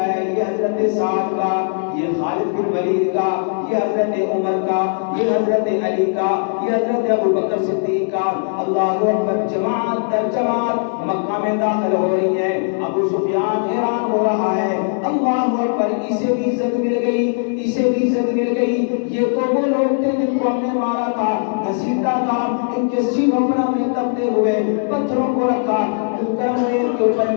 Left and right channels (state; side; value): silent; right; digital silence